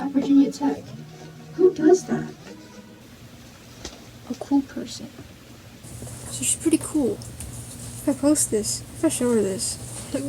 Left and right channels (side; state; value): both; identical; correlation 1.00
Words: Virginia Tech. Who does that? A cool person. So she's pretty cool. If I post this, if I show her this, like,